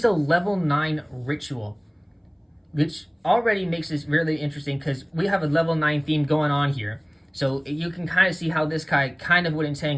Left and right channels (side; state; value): both; identical; correlation 1.00